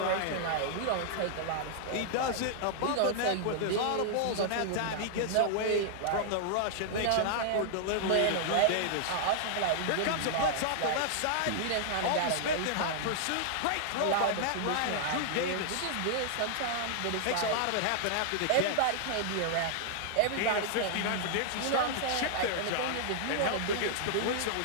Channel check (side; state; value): both; different; correlation -0.01